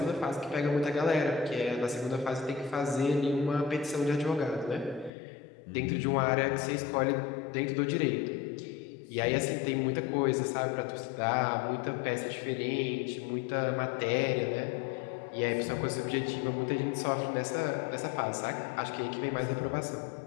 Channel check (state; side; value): drops out; right; at 5.1 s